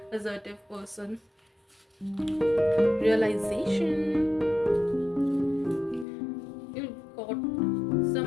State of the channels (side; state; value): right; drops out; at 6.1 s